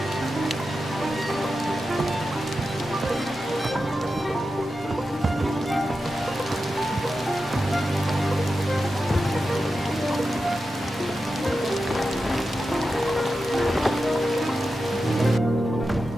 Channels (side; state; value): both; normal; correlation 0.91